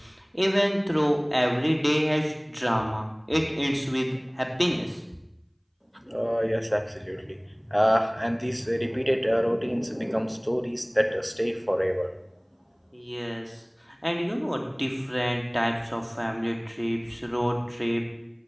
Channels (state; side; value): identical; both; correlation 1.00